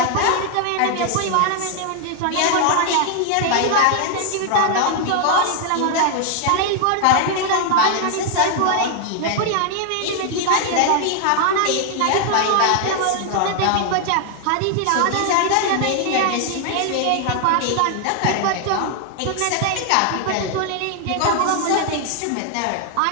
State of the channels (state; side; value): different; both; correlation 0.00